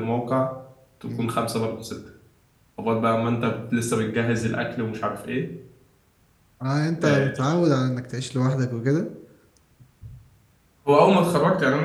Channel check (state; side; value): identical; both; correlation 1.00